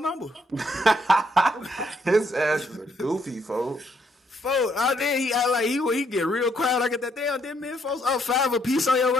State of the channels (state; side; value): normal; both; correlation 0.72